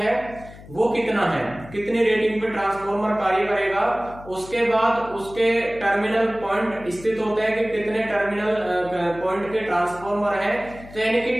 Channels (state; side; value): noise; left; hum, 18 dB below the sound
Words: वो कितना है, कितनी रेटिंग पे ट्रांसफॉर्मर कार्य करेगा। उसके बाद उसके टर्मिनल पॉइंट स्थित होते हैं कि कितने टर्मिनल पॉइंट के ट्रांसफॉर्मर है। तो यानी कि